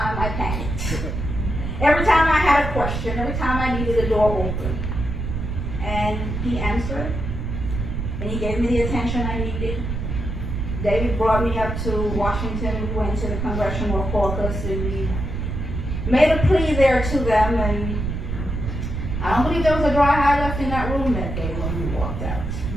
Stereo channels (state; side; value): noise; right; rumble, 3 dB below the sound